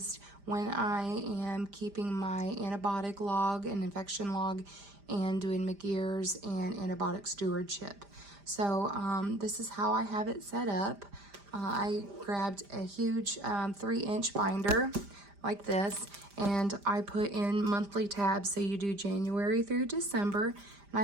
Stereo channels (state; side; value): late; left; 5.0 ms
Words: when I am keeping my antibiotic log and infection log and doing McGear's and antibiotic stewardship. So this is how I have it set up. I grabbed a huge 3-inch binder like this, and I put in monthly tabs, so you do January through December, and